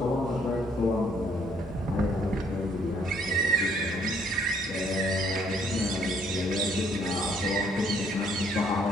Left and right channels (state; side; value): normal; both; correlation 0.66